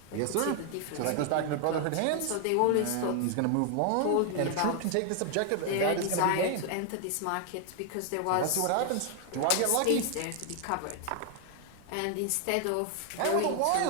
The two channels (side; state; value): both; different; correlation 0.00